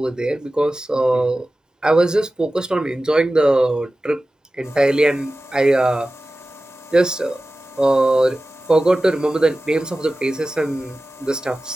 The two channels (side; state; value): both; normal; correlation 0.95